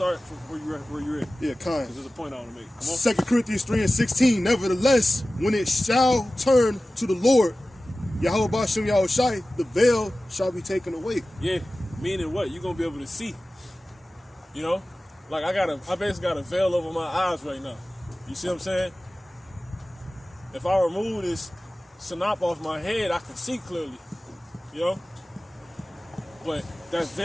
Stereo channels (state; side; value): normal; both; correlation 0.96